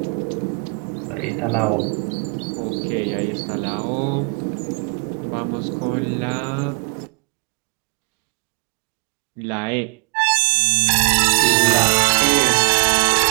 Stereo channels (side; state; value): left; quieter; 34.7 dB